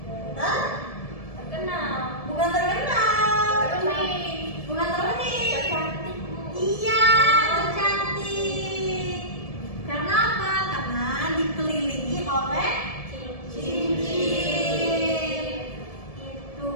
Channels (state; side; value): late; right; 1.7 ms